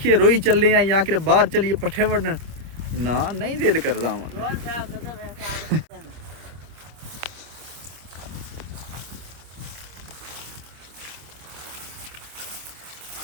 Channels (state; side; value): late; left; 26 ms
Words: ਰੋਈ ਚੱਲੇ ਆ ਜਾਂ ਕਿ ਬਾਹਰ ਚਲੀਏ ਪੱਠੇ ਵੱਢਣ ਨਾ ਨਹੀਂ ਦਿਲ ਕਰਦਾ ਵਾ